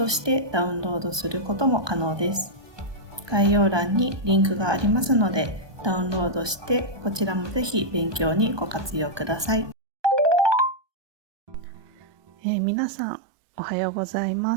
してダウンロードすることも可能です。概要欄にリンクがありますので、ダウンロードしてこちらもぜひ勉強にご活用ください。皆さんおはようございま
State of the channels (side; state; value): left; late; 1.2 ms